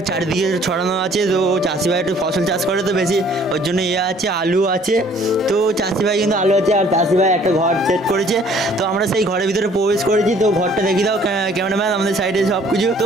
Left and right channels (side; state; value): both; normal; correlation 0.57